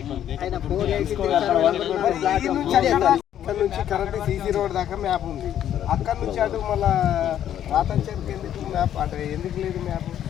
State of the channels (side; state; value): right; quieter; 10.6 dB